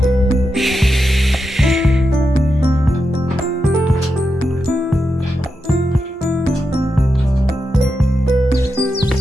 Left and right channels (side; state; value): both; normal; correlation 0.87